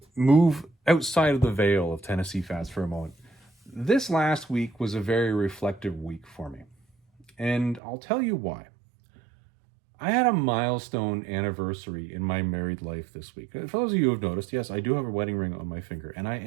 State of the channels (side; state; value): left; drops out; at 7.8 s